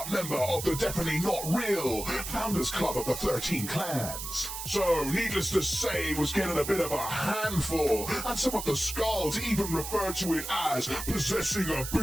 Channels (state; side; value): noise; right; hiss, 7 dB below the sound